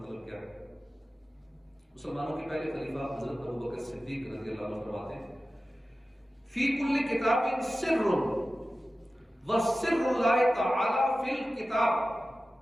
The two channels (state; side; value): normal; both; correlation 0.95